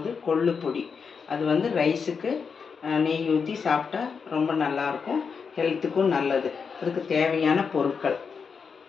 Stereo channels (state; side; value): quieter; right; 5.8 dB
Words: கொள்ளு பொடி. அது வந்து ரைஸுக்கு நெய் ஊற்றி சாப்பிட்டா ரொம்ப நல்லாயிருக்கும், ஹெல்த்துக்கும் நல்லது. அதுக்கு தேவையான பொருட்கள்: